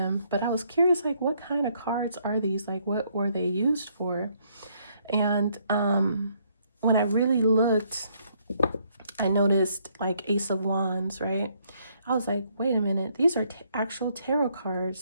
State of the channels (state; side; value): inverted; both; correlation -0.70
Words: but I was curious, like, what kind of cards are these? Like, what were they used for? And when I really looked, I noticed like Ace of Wands, right? I was like, wait a minute, these are actual tarot